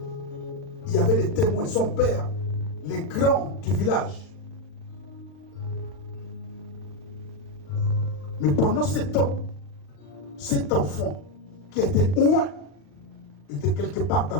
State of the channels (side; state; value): right; late; 40 ms